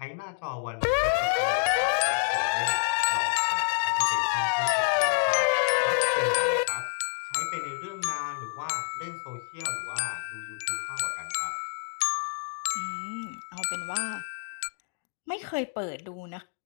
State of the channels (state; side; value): silent; right; digital silence